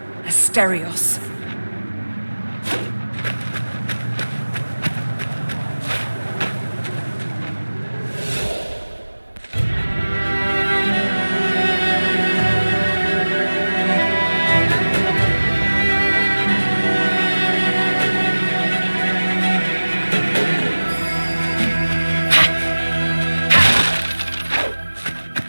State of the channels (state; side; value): inverted; both; correlation -1.00